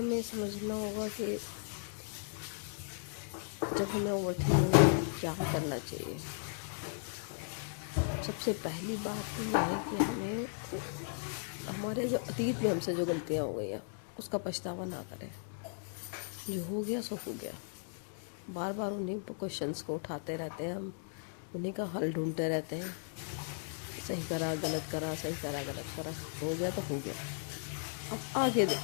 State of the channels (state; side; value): silent; right; digital silence